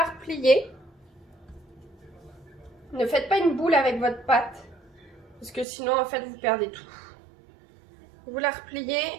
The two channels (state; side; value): drops out; left; at 5.7 s